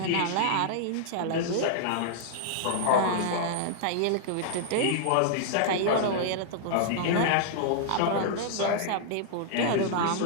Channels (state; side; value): different; both; correlation -0.01